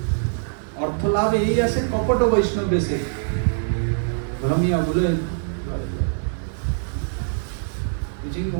अर्थ लाभ यही आसे कपट वैष्णव बेसे भ्रमिया बुले. Wishing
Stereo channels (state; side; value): silent; left; digital silence